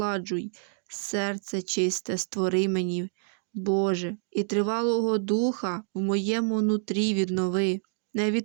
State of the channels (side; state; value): left; silent; 60 dB below the other